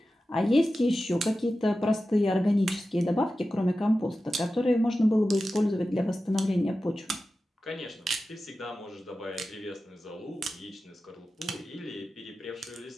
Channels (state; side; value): normal; both; correlation 0.94